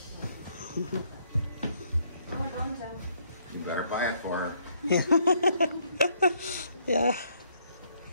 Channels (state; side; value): inverted; both; correlation -0.69